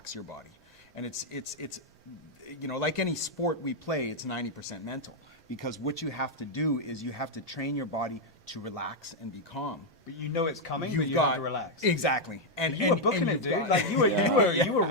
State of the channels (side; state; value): both; normal; correlation -0.01